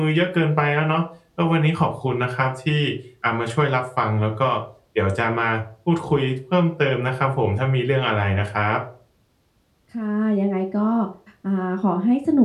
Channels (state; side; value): identical; both; correlation 1.00